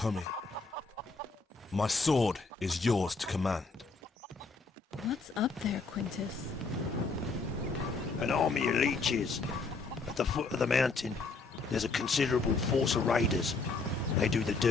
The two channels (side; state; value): right; quieter; 4.1 dB